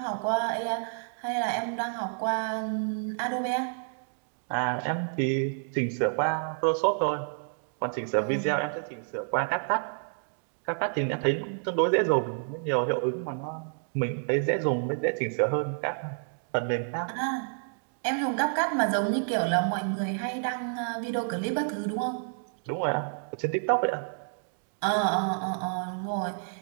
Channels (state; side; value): silent; left; digital silence